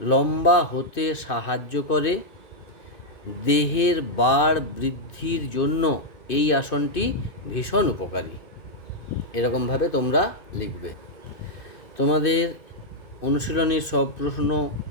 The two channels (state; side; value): late; right; 2.6 ms